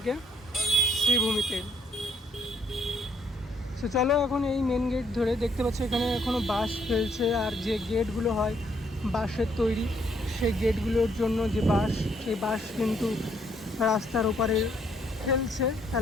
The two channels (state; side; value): normal; both; correlation 0.69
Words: শ্রীভূমিতে। তো চলো এখন এই মেন গেট ধরে, দেখতে পাচ্ছি এখানে এখনও বাঁশ ফেলছে, আর যে গেটগুলো হয় বাঁশের তৈরি, সেই গেটগুলোর জন্য যে বাঁশ, সেই বাঁশ কিন্তু রাস্তার ওপারে ফেলছে,